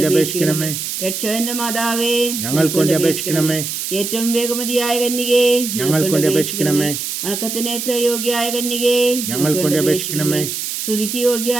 അപേക്ഷിക്കണമേ. രക്ഷകന്റെ മാതാവേ, ഞങ്ങൾക്ക് വേണ്ടി അപേക്ഷിക്കണമേ. ഏറ്റവും വേഗമതിയായ കന്യകേ, ഞങ്ങൾക്ക് വേണ്ടി അപേക്ഷിക്കണമേ. വണക്കത്തിന് ഏറ്റവും യോഗ്യയായ കന്യകേ, ഞങ്ങൾക്ക് വേണ്ടി അപേക്ഷിക്കണമേ. സ്തുതിക്ക്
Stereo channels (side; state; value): right; noise; hiss, 4 dB below the sound